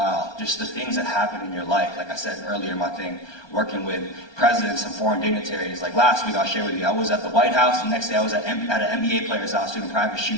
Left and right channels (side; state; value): right; late; 1.2 ms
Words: just the things that happen in your life. Like I said earlier, my thing, working with presidents and foreign dignitaries. Like last week, I'll share with you, I was at the White House, the next day I was at an NBA player's house doing a private